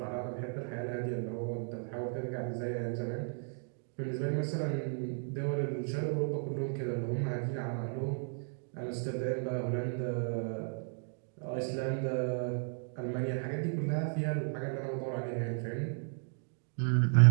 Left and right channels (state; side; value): silent; left; 55 dB below the other